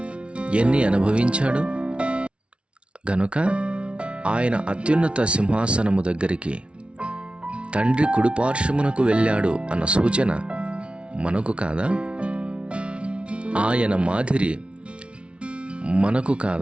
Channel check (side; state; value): left; late; 0.059 ms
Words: ఎన్ని అనుభవించాడు గనుక ఆయన అత్యున్నత సింహాసనము దగ్గరికి తండ్రి కుడిపార్శ్వమునకు వెళ్ళాడు అన్న సూచన మనకు కాదా? ఆయన మాదిరి మనకు